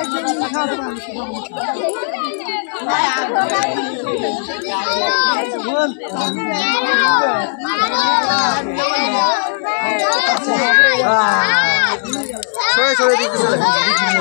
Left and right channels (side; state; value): right; silent; 69 dB below the other